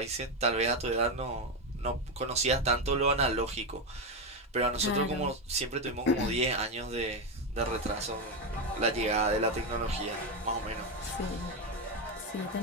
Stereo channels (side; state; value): both; normal; correlation 0.09